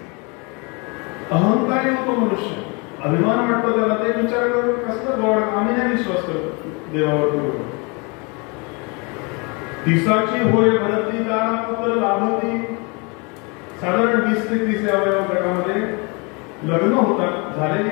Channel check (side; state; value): right; quieter; 30.6 dB